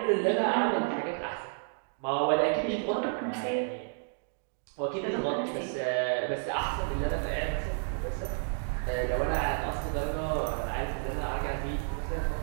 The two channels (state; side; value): silent; left; digital silence